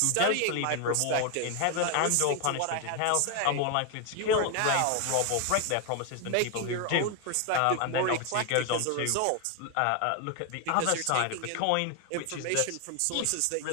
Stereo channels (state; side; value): different; both; correlation 0.01